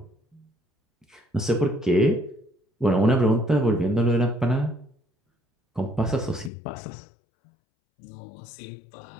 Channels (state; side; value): drops out; right; at 6.5 s